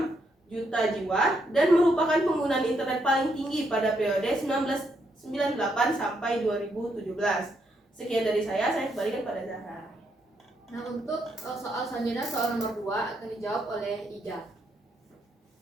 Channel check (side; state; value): both; normal; correlation 0.77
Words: juta jiwa dan merupakan penggunaan internet paling tinggi pada periode 1998 sampai 2017. Sekian dari saya kembalikan pada Zahra. Nah, untuk soal selanjutnya, soal nomor 2 akan dijawab oleh Ija.